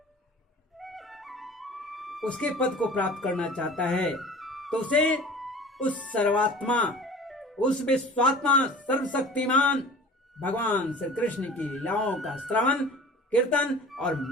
उसके पद को प्राप्त करना चाहता है, तो उसे उस सर्वात्मा, उस विश्वात्मा, सर्वशक्तिमान भगवान श्री कृष्ण की लीलाओं का श्रवण, कीर्तन और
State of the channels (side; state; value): both; normal; correlation 0.42